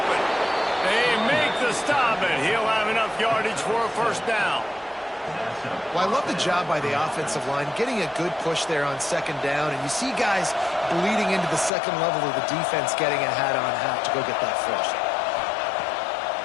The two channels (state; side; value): drops out; right; at 11.7 s